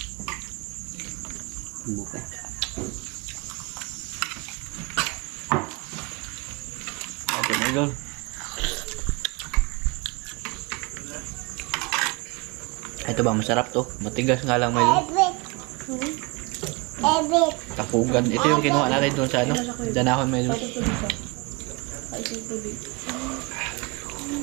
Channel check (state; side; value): quieter; left; 27.2 dB